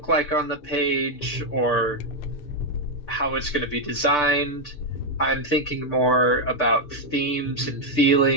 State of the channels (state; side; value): late; right; 6.8 ms